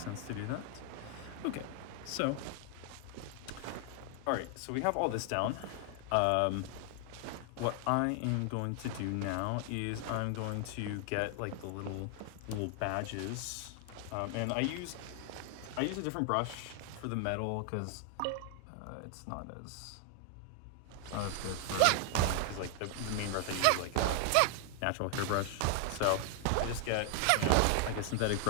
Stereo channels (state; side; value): different; both; correlation 0.00